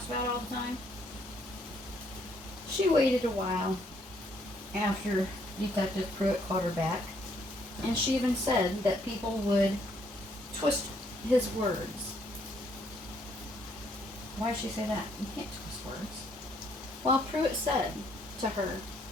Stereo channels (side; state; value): both; normal; correlation 0.69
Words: about all the time. She waited a while after Detective Pruitt called her back, and she even said that people would twist his words. Why did she say that? You can't twist words. Well, Pruitt said to her,